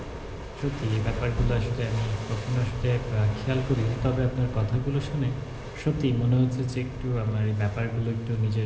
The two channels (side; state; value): both; identical; correlation 1.00